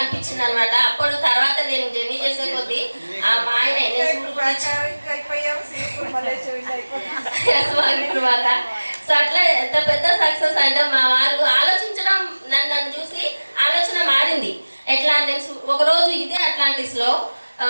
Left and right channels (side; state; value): both; inverted; correlation -1.00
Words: అనమాట. అప్పుడు తర్వాత నేను జర్నీ చేసే కొద్దీ ఆ మా ఆయన తర్వాత సో అట్లా ఎంత పెద్ద సక్సెస్ అంటే మా వారు ఆలోచించడం, నన్ను చూసి ఆలోచన మారింది. ఎట్లా నేను ఒకరోజు ఇదే అట్లాంటిస్లో